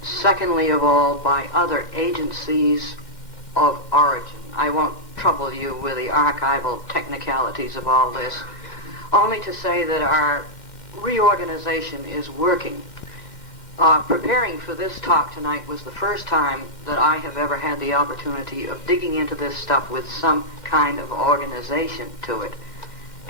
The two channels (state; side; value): late; right; 2.1 ms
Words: secondly of all, by other agencies of origin. I won't trouble you with the archival technicalities of all this, only to say that our reorganization is working. Preparing for this talk tonight was the first time that I have ever had the opportunity of digging into this stuff with some kind of organization to it.